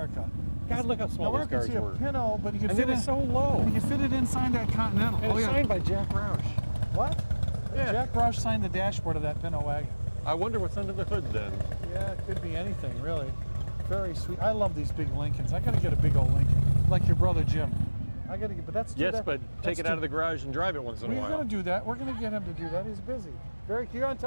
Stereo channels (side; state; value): both; inverted; correlation -1.00